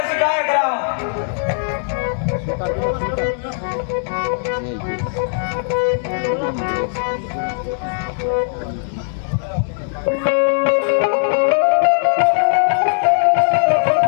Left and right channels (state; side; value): silent; right; digital silence